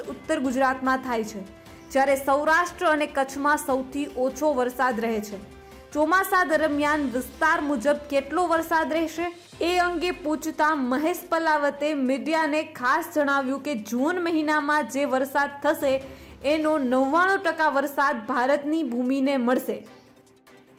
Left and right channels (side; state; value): both; identical; correlation 1.00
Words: ઉત્તર ગુજરાતમાં થાય છે, જ્યારે સૌરાષ્ટ્ર અને કચ્છમાં સૌથી ઓછો વરસાદ રહે છે. ચોમાસા દરમિયાન વિસ્તાર મુજબ કેટલો વરસાદ રહેશે એ અંગે પૂછતા મહેશ પલાવતે મીડિયાને ખાસ જણાવ્યું કે જૂન મહિનામાં જે વરસાદ થશે એનો 99% વરસાદ ભારતની ભૂમિને મળશે.